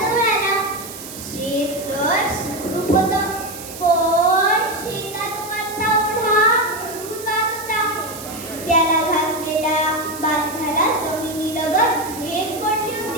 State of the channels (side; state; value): right; noise; hiss, 12 dB below the sound